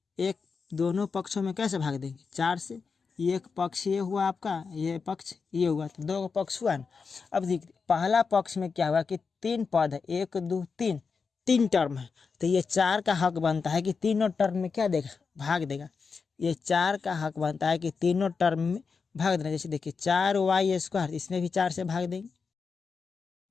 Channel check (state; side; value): quieter; right; 5.2 dB